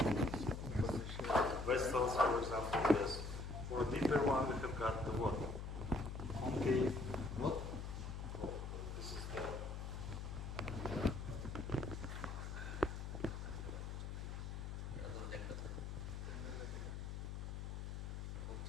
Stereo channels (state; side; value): noise; left; hum, 5 dB below the sound